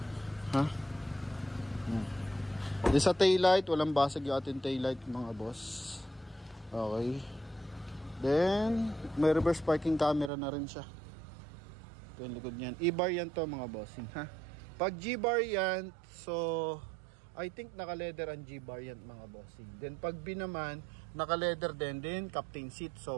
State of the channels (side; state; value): left; drops out; at 10.3 s